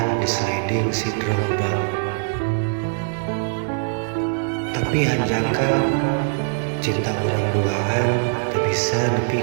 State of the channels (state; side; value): silent; left; 62 dB below the other